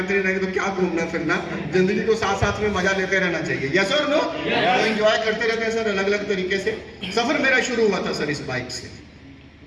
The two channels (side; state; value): both; identical; correlation 1.00